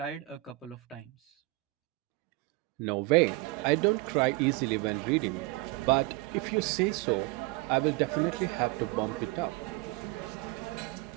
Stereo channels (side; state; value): left; quieter; 22.2 dB